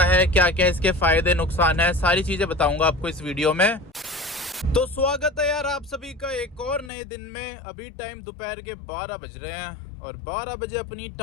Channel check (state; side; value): drops out; right; at 6.9 s